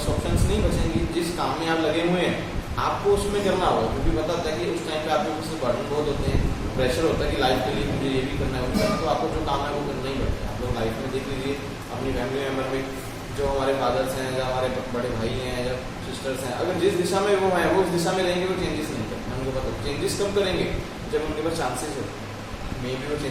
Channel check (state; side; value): identical; both; correlation 1.00